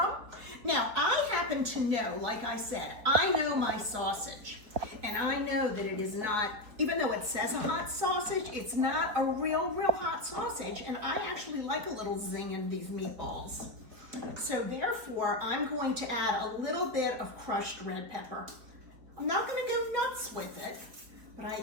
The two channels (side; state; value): left; late; 4.5 ms